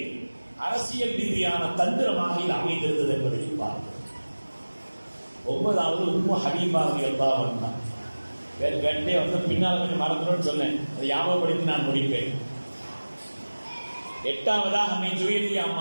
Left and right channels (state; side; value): inverted; both; correlation -1.00